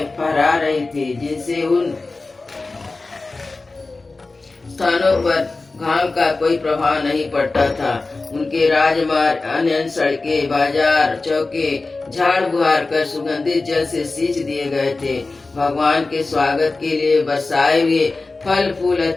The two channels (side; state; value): right; quieter; 3.5 dB